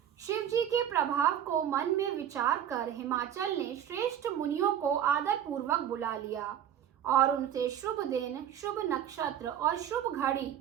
शिव जी के प्रभाव को मन में विचार कर हिमाचल ने श्रेष्ठ मुनियों को आदर पूर्वक बुला लिया और उनसे शुभ दिन, शुभ नक्षत्र और शुभ घड़ी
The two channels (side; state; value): left; quieter; 9.9 dB